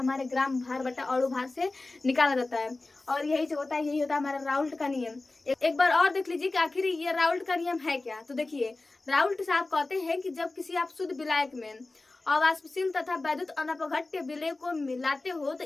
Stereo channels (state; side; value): quieter; right; 3.2 dB